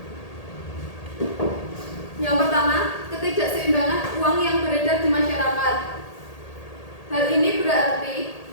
Yang pertama, ketidakseimbangan uang yang beredar di masyarakat. Hal ini berarti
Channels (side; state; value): right; late; 1.8 ms